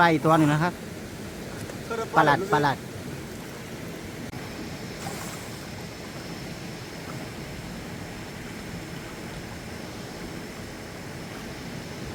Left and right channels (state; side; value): identical; both; correlation 1.00